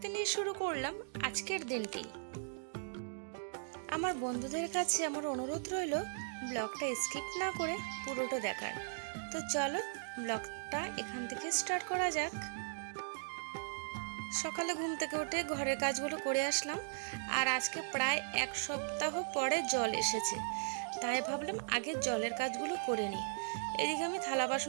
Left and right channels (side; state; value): left; silent; digital silence